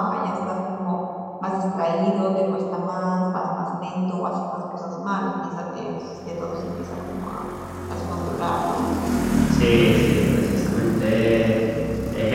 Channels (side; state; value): both; identical; correlation 1.00